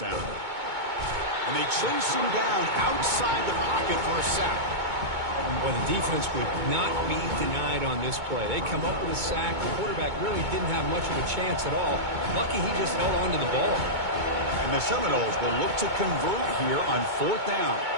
And they chase him down outside the pocket for a sack. Well, the defense would not be denied on this play. They come up with a sack. The quarterback really didn't have much of a chance at all. Lucky he just held on to the ball. And the Seminoles will look to convert here on 4th down.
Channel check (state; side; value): late; left; 2.2 ms